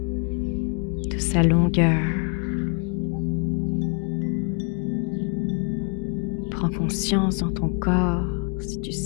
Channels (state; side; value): quieter; right; 38.8 dB